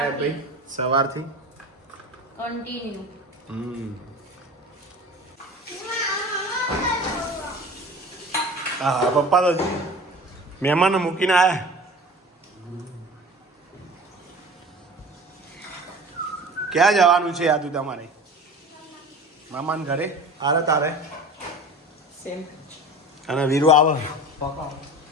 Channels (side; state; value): both; normal; correlation 0.38